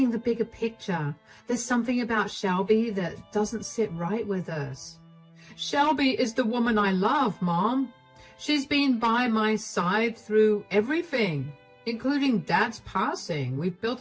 the bigger picture. There's something about Shelby that doesn't sit right with us. Shelby is the woman I love, Mom. She's been by my side through everything, including Dad's passing. We've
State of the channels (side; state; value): both; identical; correlation 1.00